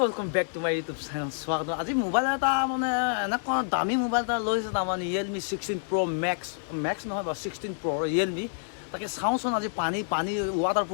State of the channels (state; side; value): silent; right; 59 dB below the other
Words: welcome back to my YouTube channel স্বাগত আজি মোবাইল এটা মানে এনেকুৱা দামী মোবাইল এটা লৈছে তাৰমানে ৰিয়েলমি 16 Pro মেক্স নহয় বা 16 Pro ৰিয়েলমি তাকে চাওঁচোন আজি পানী ৱাটাৰ